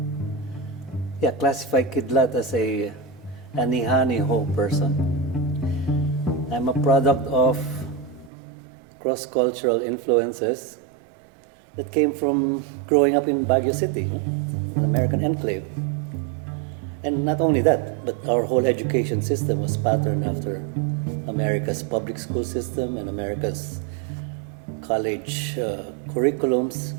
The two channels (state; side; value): drops out; left; at 8.3 s